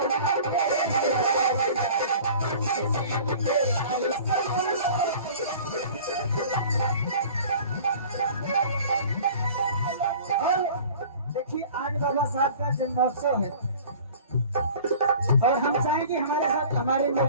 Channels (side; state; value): both; inverted; correlation -0.45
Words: और देखिए आज बाबा साहब का जन्मोत्सव है और हम चाहेंगे हमारे साथ हमारे